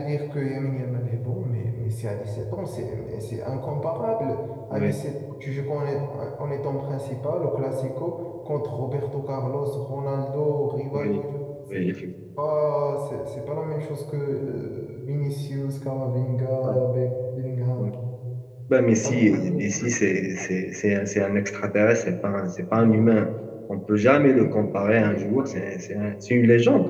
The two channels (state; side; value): identical; both; correlation 1.00